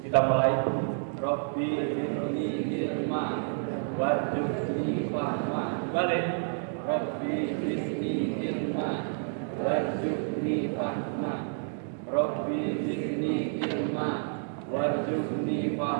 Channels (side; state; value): left; silent; digital silence